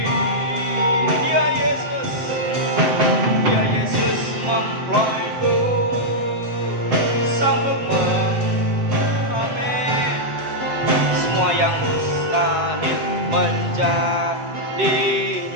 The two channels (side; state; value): left; late; 7.7 ms